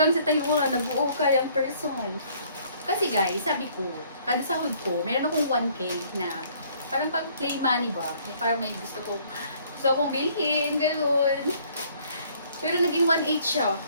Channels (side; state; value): both; inverted; correlation -0.60